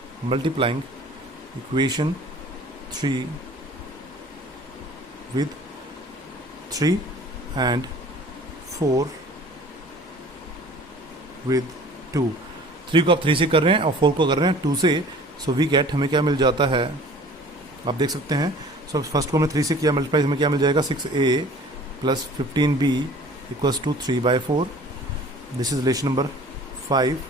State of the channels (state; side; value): normal; both; correlation 0.47